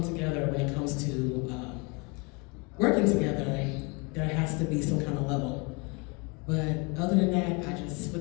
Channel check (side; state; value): right; quieter; 30.2 dB